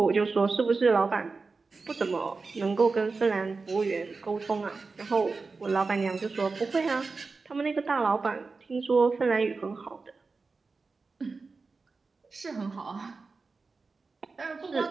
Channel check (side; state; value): left; quieter; 4.2 dB